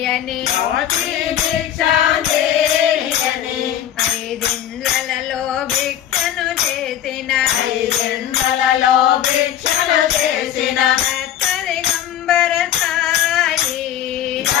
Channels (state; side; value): quieter; right; 10.8 dB